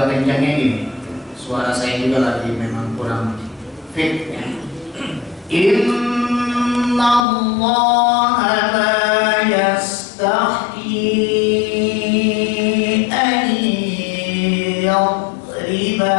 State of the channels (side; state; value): right; drops out; at 7.2 s